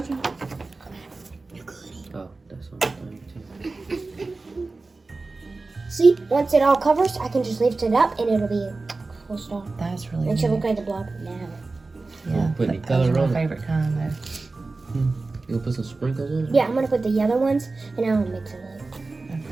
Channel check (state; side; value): quieter; left; 3.6 dB